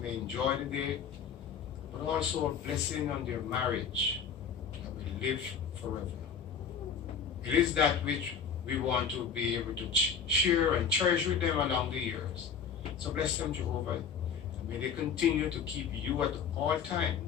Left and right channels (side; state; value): right; quieter; 6.7 dB